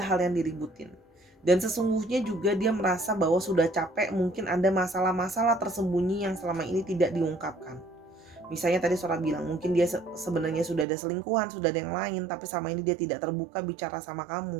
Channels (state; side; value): drops out; left; at 10.9 s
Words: hal yang diributin. Dan sesungguhnya juga dia merasa bahwa sudah capek, mungkin ada masalah-masalah tersembunyi yang selama ini tidak diungkapkan. Misalnya tadi Sora bilang mungkin dia sebenarnya sudah ada selingkuhan, sudah ada yang lain, tapi sama ini dia tidak terbuka bicara sama